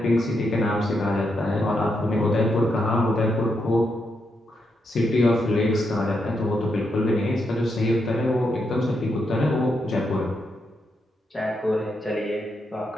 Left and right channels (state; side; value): normal; both; correlation 0.82